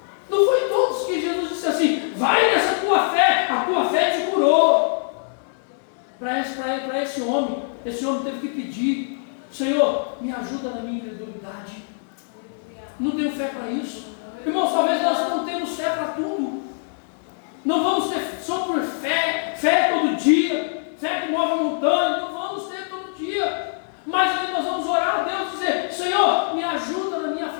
Não foi todos que Jesus disse assim: vai nessa tua fé, a tua fé te curou. Para esse homem teve que pedir: Senhor, me ajuda na minha incredulidade. Não tenho fé para isso. Irmãos, talvez nós não temos fé para tudo. Não vamos ter só por fé todo dia, fé que move montanha, não vamos ter todo dia. Mas aí nós vamos orar a Deus e dizer: Senhor, me ajuda na minha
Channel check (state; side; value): silent; right; 62 dB below the other